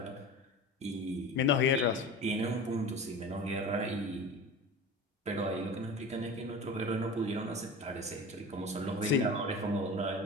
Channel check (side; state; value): both; normal; correlation 0.33